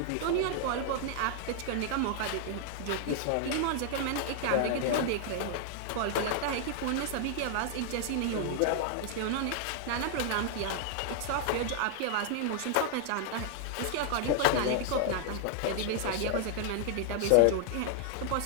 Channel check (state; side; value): different; both; correlation 0.00